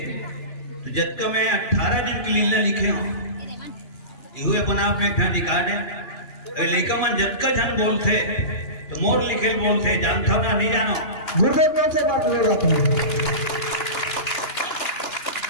तो जत्का में 18 दिन की लीला लिखे हो, ये अपन आप में एक ठन रिकॉर्ड है। लेका मन जत्का जन बोलते तो मोर लिखे बोलते, जानता ना नहीं जानो गुरुदेव कौन से बात ले रहा था।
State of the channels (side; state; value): right; late; 2.9 ms